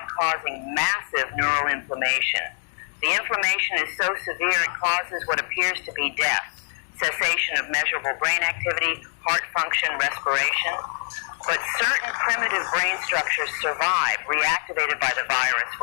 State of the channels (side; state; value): right; silent; digital silence